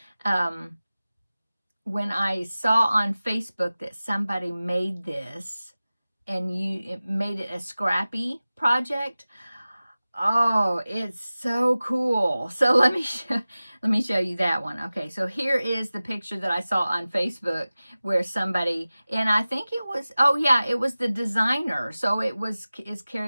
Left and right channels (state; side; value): inverted; both; correlation -0.97